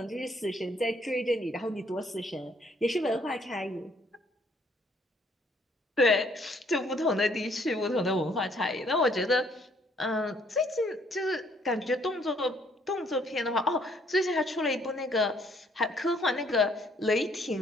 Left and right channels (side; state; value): both; normal; correlation 0.65